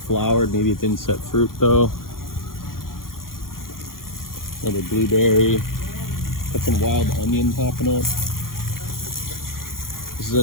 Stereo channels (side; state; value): right; late; 0.91 ms